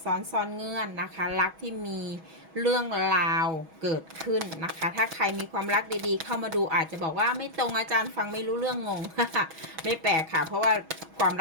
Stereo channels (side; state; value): left; late; 6.2 ms